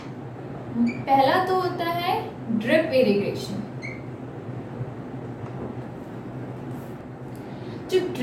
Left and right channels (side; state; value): both; identical; correlation 1.00